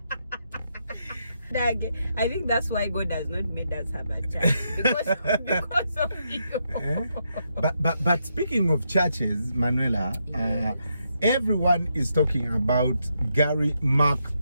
I think that's why God has not made us have a church because of you. But speaking of churches, Manuela, yes. Everyone is talking about Gary Mark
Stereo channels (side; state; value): both; inverted; correlation -0.80